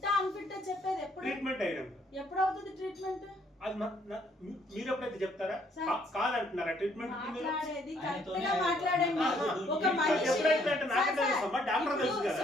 అన్ఫిట్టా చెప్పేది? ఎప్పుడు ట్రీట్మెంట్ అయినా ఎప్పుడు అవుతుంది ట్రీట్మెంట్? అది మీరు ఎప్పుడైతే చెప్తారా? కాదంటున్నారా ట్రీట్మెంట్? మాట్లాడేది కరెక్ట్ గా మాట్లాడండి. ఒక మనిషి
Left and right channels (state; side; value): normal; both; correlation 0.67